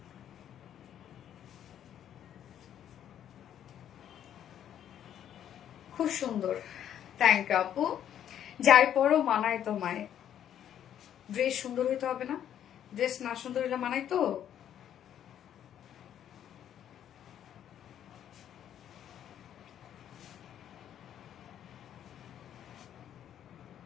খুব সুন্দর, থ্যাংক ইউ আপু। যাই পরও মানায় তোমায়, ড্রেস সুন্দর হইতে হবে না? ড্রেস না সুন্দর হইলে মানাই তো?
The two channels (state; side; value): quieter; right; 10.2 dB